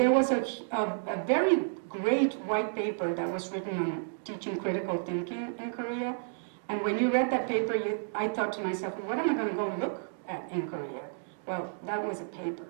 was a very great white paper that was written on teaching critical thinking in Korea. And when you read that paper, I thought to myself, well, what am I going to go look at in Korea? Well, that was a paper.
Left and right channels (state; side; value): silent; left; digital silence